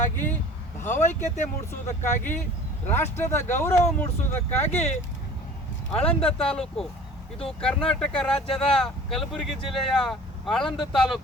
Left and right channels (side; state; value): both; normal; correlation 0.45